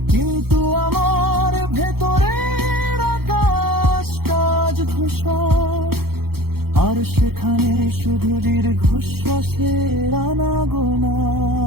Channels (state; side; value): late; left; 0.95 ms